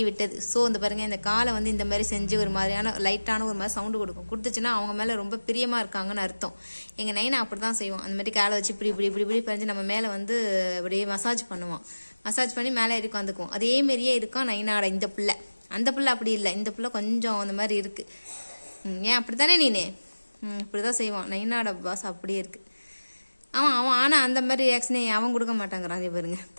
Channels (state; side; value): inverted; both; correlation -1.00